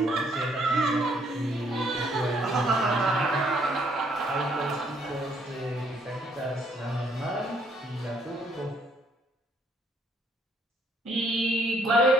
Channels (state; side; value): normal; both; correlation 0.67